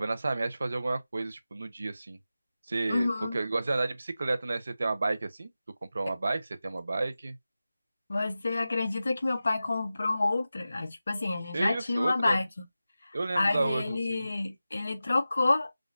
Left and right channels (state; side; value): inverted; both; correlation -0.94